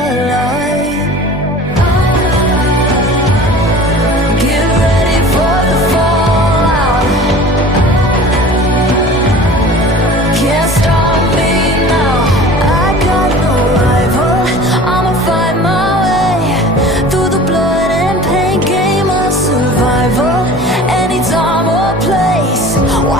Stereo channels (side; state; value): both; normal; correlation 0.41